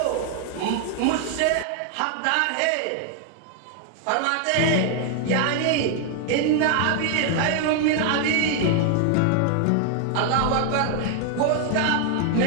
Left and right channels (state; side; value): different; both; correlation 0.00